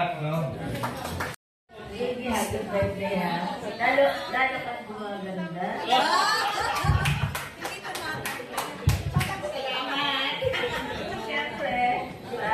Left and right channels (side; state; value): both; identical; correlation 1.00